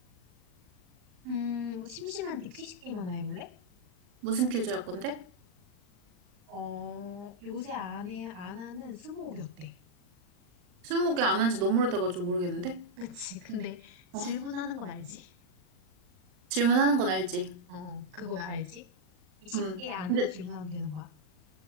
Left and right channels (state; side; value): late; left; 39 ms